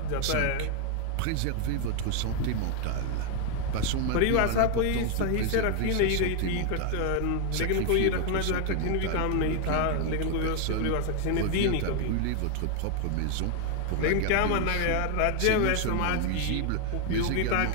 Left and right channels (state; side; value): different; both; correlation 0.00